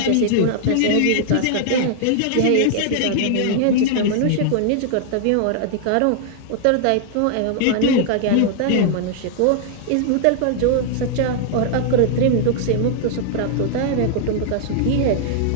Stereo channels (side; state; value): both; different; correlation 0.00